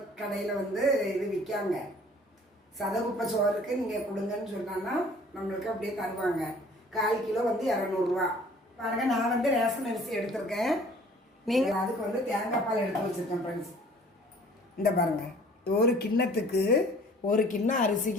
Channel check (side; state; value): both; normal; correlation 0.52